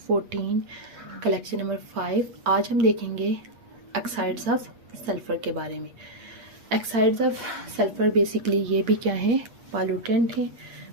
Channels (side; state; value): left; late; 8.4 ms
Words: collection number 5। आज हम देखेंगे ऑक्साइड्स ऑफ सल्फ़र के बारे में। ऑक्साइड्स ऑफ सल्फ़र बेसिकली ये भी क्या है, पॉल्यूटेंट हैं।